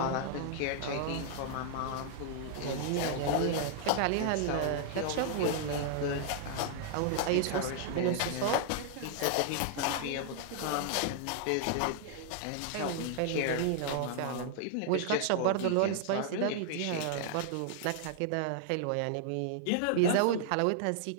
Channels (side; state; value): both; different; correlation -0.01